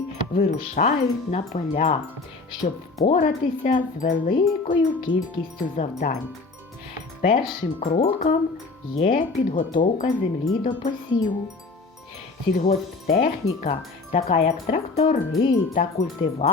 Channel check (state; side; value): quieter; right; 3.8 dB